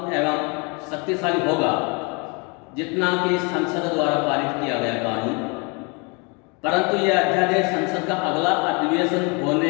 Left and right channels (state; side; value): quieter; right; 31.5 dB